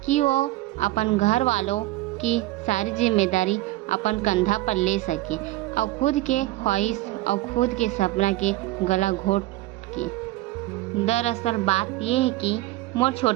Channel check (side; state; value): left; quieter; 17.8 dB